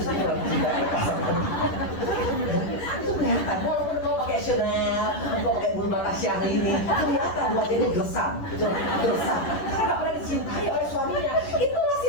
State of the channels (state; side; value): late; right; 10 ms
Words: itu orang dicintai. Itu kelihatan, walaupun kau pakai Chanel, kau pakai bulu mata Syahrini, kelihatan wajahnya gersam, gitu, gersam. Karena nggak pernah dicintai oleh suaminya. Itu